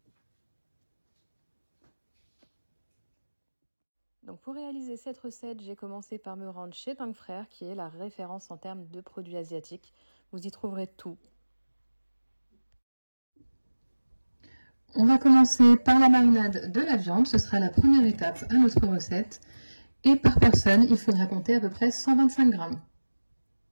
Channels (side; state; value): both; inverted; correlation -1.00